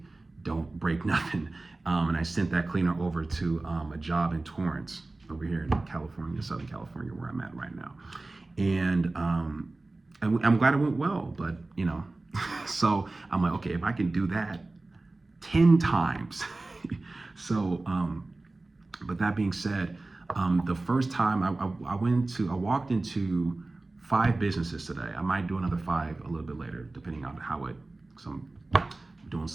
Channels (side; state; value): left; quieter; 3.1 dB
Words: don't break nothing, and I sent that cleaner over to a job in Torrance, over here in California, Southern California, where I'm at right now, and I'm glad it went well, but so I'm like, okay, if I can do that 10 times, so but that being said, the first time I walked into 5 businesses today. I might do another 5 a little bit later, depending on because I'm doing